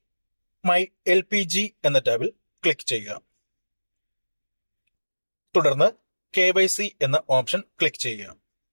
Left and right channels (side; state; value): both; inverted; correlation -1.00